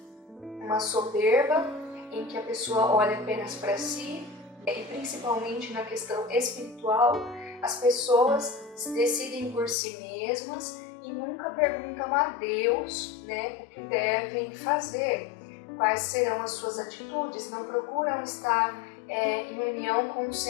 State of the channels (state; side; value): drops out; right; at 9.8 s